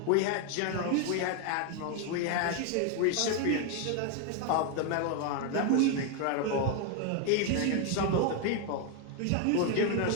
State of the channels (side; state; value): both; different; correlation 0.01